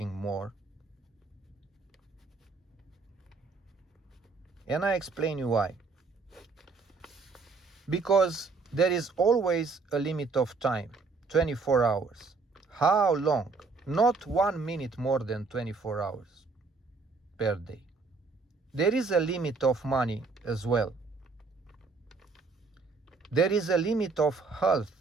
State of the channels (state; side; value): quieter; left; 4.2 dB